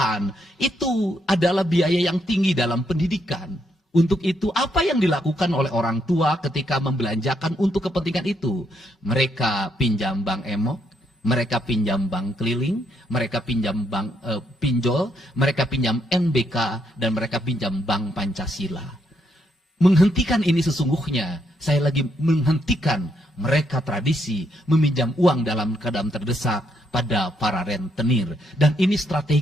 itu adalah biaya yang tinggi dalam pendidikan. Untuk itu, apa yang dilakukan oleh orang tua ketika membelanjakan untuk kepentingan itu? Mereka pinjam bank emok, mereka pinjam bank keliling, mereka pinjam bank pinjol, mereka pinjam NBK, dan mereka pinjam bank Pancasila. Menghentikan ini sesungguhnya, saya lagi menghentikan mereka tradisi meminjam uang dalam keadaan terdesak pada para rentenir. Dan ini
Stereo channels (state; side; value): normal; both; correlation 0.76